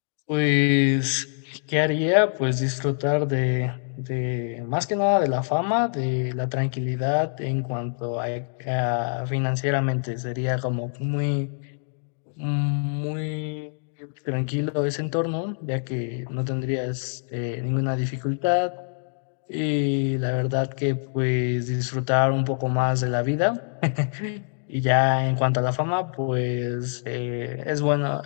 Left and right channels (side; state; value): right; silent; digital silence